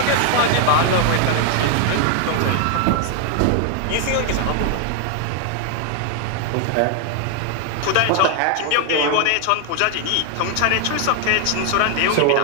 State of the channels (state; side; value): different; both; correlation 0.00